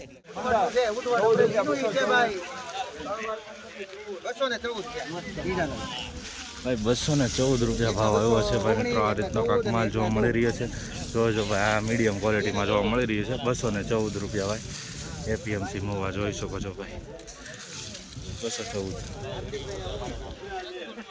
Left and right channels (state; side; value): identical; both; correlation 1.00